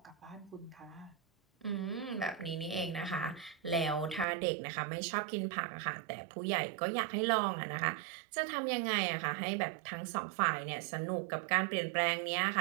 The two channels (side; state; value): left; drops out; at 4.2 s